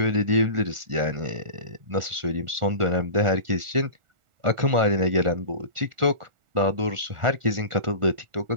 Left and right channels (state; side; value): late; left; 1.4 ms